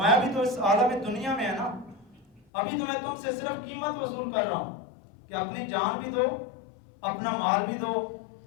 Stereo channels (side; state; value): right; drops out; at 2.4 s